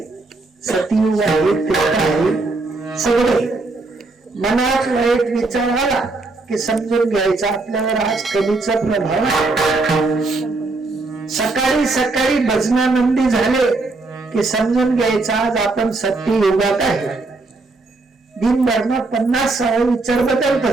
सतयुग आहे, त्रेता आहे. सगळे मनात वाईट विचार आला की समजून घ्यायचा आपल्यावर आज कलीचा प्रभाव आहे. सकाळी सकाळी भजनानंदी झाले की समजून घ्यायचा आज आपण सत्ययुगात आहे. दिनभर 50 विचार बदलत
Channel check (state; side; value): quieter; left; 3.4 dB